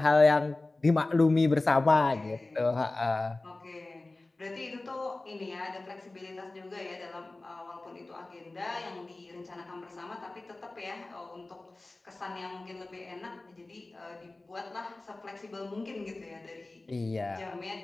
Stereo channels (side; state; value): right; quieter; 3.0 dB